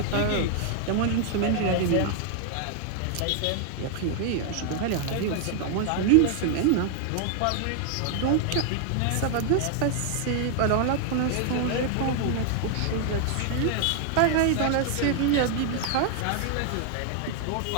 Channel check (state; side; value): different; both; correlation 0.00